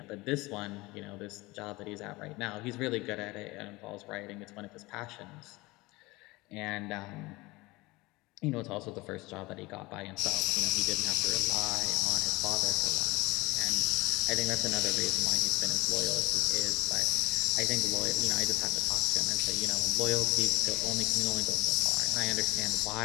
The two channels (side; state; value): right; quieter; 21.9 dB